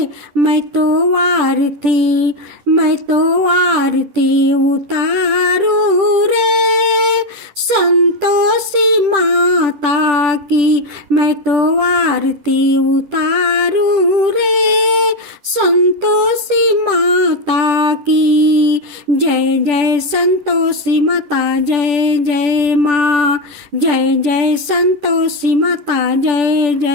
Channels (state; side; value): late; left; 10 ms